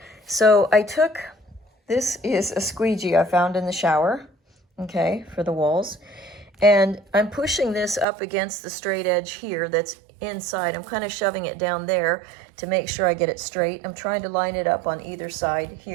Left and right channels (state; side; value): drops out; left; at 8.1 s